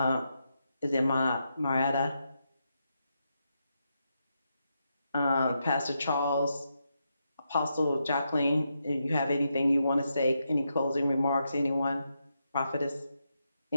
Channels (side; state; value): both; inverted; correlation -0.83